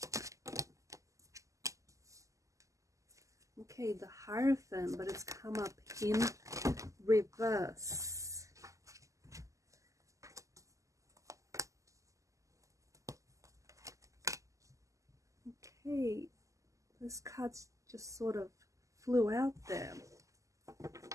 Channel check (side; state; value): left; late; 0.16 ms